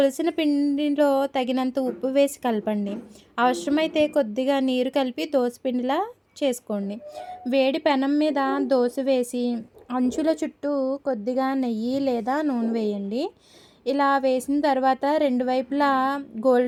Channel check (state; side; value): identical; both; correlation 1.00